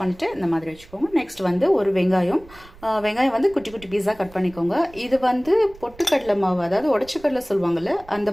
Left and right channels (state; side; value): noise; right; rumble, 22 dB below the sound